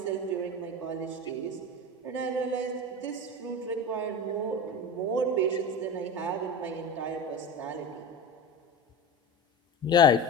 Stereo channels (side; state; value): both; normal; correlation 0.27